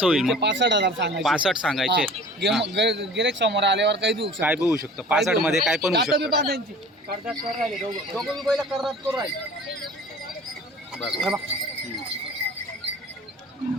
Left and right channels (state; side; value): normal; both; correlation 0.44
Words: होईल मग? 65,000 सांगायचे. 65 सांगायचे. गिरेक समोर आल्यावर काही देऊ शकतो. काय बी होऊ शकतं 65 मध्ये, काय पण होऊ शकतं. दोघं बी बैल करतात करू राहिले. बरं